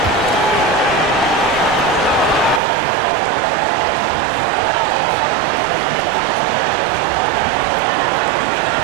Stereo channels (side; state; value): left; drops out; at 2.6 s